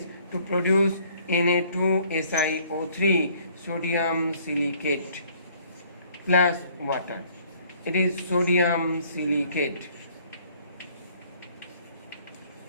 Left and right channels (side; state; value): both; inverted; correlation -0.59